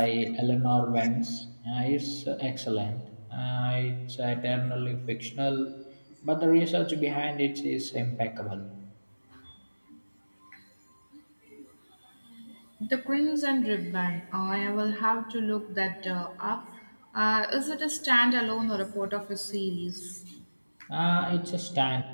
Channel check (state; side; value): inverted; both; correlation -1.00